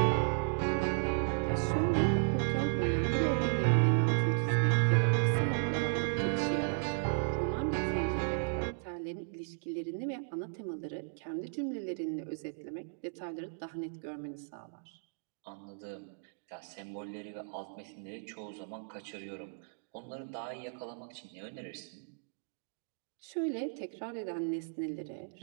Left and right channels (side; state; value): left; silent; digital silence